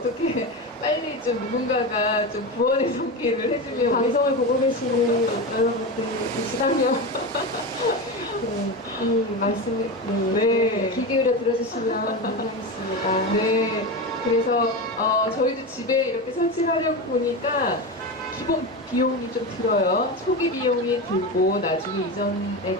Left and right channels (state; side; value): normal; both; correlation 0.21